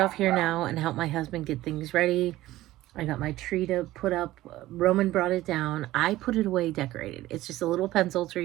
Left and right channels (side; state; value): left; quieter; 16.1 dB